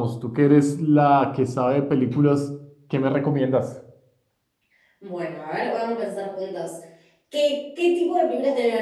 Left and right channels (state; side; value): identical; both; correlation 1.00